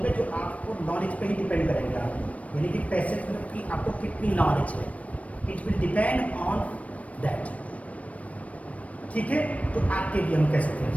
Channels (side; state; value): right; late; 0.066 ms